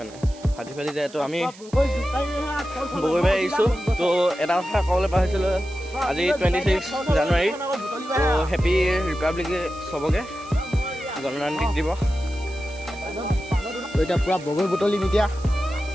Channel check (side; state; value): right; noise; hiss, 21 dB below the sound